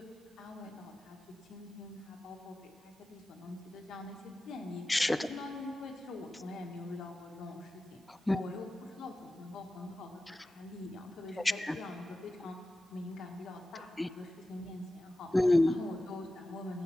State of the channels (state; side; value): normal; both; correlation 0.94